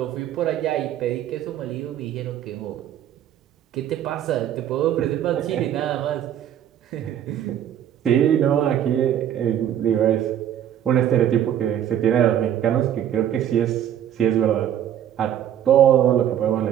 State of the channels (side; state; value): left; quieter; 10.5 dB